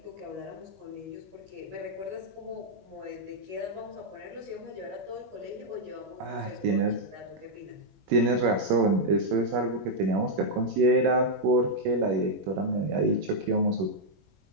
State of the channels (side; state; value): left; late; 21 ms